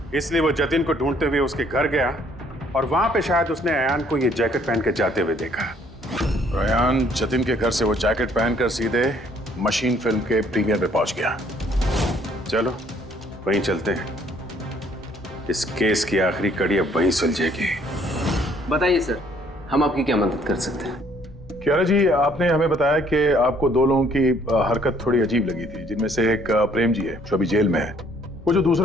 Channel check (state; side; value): normal; both; correlation 0.63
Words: इसलिए वो जतिन को ढूंढते हुए उसके घर गया और वहां पे शायद उसने अयान को ये जैकेट पहन के जाते हुए देखा। अयान जतिन के घर से वो जैकेट पहनकर सीधे मशीन फिल्म के प्रीमियर में पहुंच गया। चलो वहीं चलते हैं, इस केस की आखिरी कड़ी अब वहीं सुलझेगी। बताइए सर, हम आपकी क्या मदद कर सकते हैं? कियारा जी, आपने हमें बताया कि आपको 2 लोगों की हरकत थोड़ी अजीब लगी थी, जिनमें से एक प्रेम जी है जो अभी जेल में है। वो जो